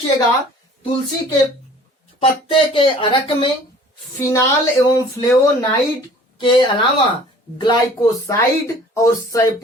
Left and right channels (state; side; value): normal; both; correlation 0.50